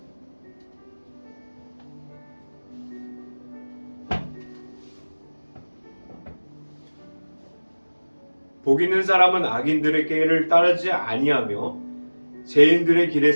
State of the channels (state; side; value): inverted; both; correlation -1.00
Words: 복 있는 사람은 악인들의 길을 따르지 아니하며 죄인들의 길에